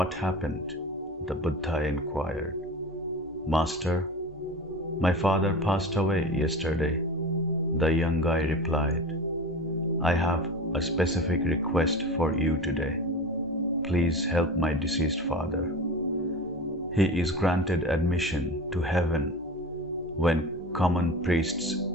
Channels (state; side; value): normal; both; correlation 0.32